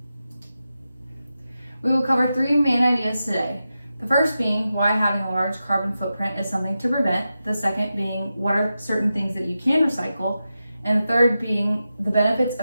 We will cover three main ideas today. The first being why having a large carbon footprint is something to prevent. The second being what are certain things that you can recycle. And the third being the benefits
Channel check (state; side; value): inverted; both; correlation -0.91